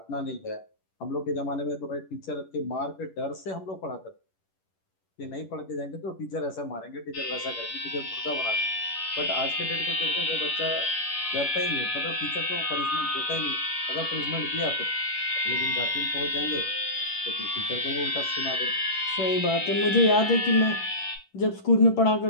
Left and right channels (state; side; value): late; right; 11 ms